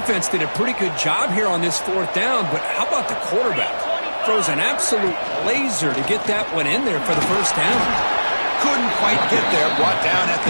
did a pretty good job here on this 4th down, but how about the quarterback? Throws an absolute laser to get that one in there for the 1st down. Couldn't quite get there. Brought down at the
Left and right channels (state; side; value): inverted; both; correlation -1.00